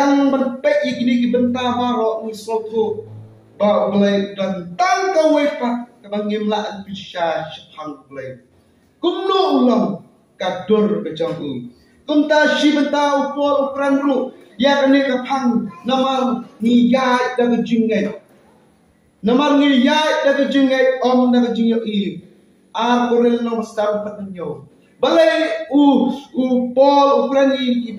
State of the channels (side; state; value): both; identical; correlation 1.00